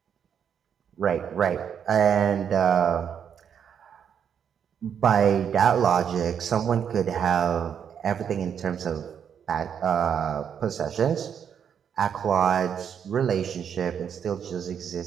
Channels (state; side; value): quieter; left; 8.0 dB